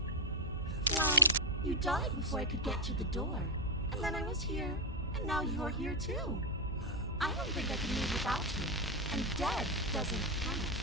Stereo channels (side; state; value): both; normal; correlation 0.04